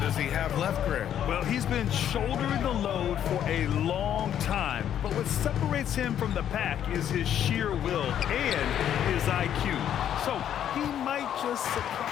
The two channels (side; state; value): right; quieter; 10.1 dB